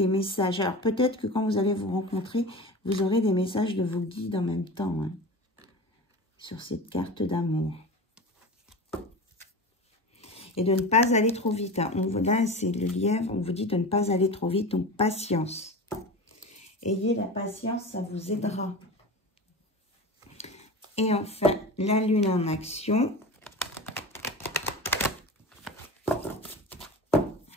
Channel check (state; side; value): normal; both; correlation 0.31